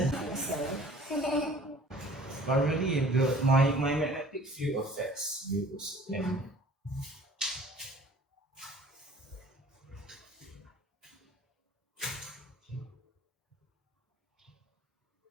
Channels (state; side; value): normal; both; correlation 0.50